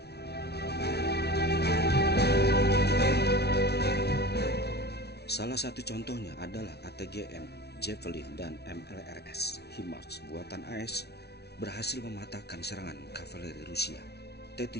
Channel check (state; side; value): late; right; 0.48 ms